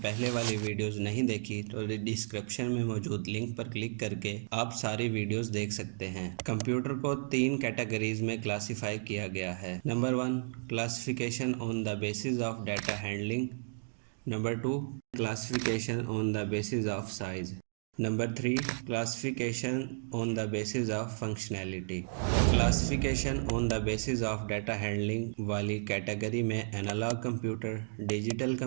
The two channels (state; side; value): silent; left; digital silence